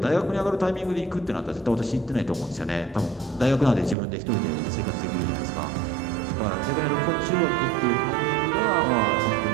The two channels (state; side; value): drops out; left; at 4.0 s